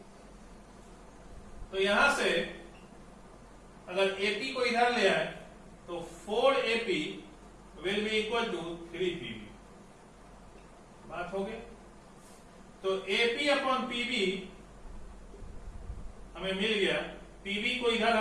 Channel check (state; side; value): identical; both; correlation 1.00